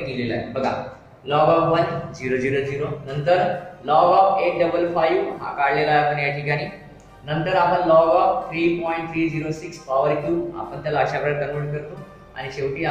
केलेलं आहे बघा. लॉग ऑफ 1 0 0 0, नंतर लॉग ऑफ 855 हा काढलेला आहे आपण या ठिकाणी. नंतर आपण लॉग ऑफ 3.306 पॉवर क्यूब आपण त्याला अशा प्रकारे कन्वर्ट करतो आणि शेवटी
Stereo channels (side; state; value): both; identical; correlation 1.00